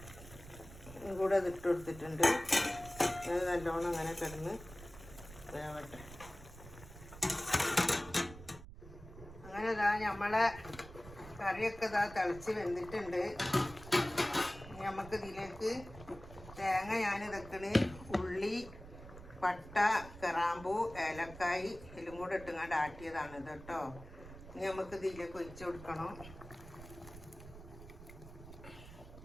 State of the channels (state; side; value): noise; right; rumble, 16 dB below the sound